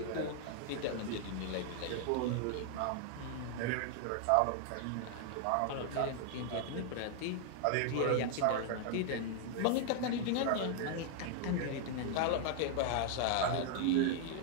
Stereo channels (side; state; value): both; different; correlation 0.00